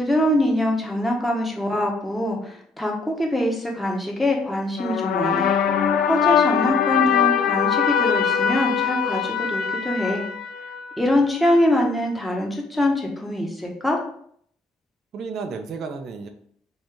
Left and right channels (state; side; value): quieter; right; 3.1 dB